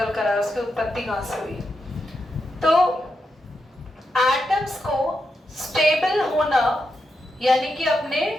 कर आया, उसकी उत्पत्ति कहाँ से हुई। तो एटम्स को स्टेबल होना यानी कि अपने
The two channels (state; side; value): normal; both; correlation 0.85